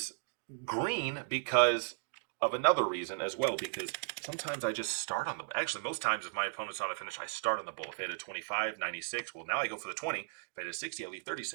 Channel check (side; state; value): left; silent; digital silence